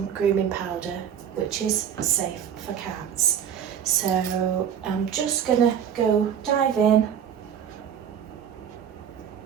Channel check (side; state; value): left; quieter; 8.7 dB